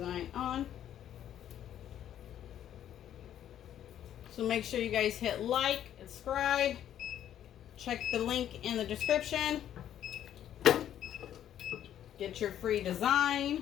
on. So make sure you guys hit like and subscribe. Check the link in the description. Get your free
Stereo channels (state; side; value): quieter; right; 10.8 dB